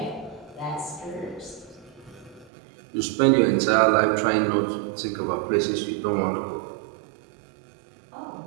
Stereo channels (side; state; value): left; drops out; at 2.5 s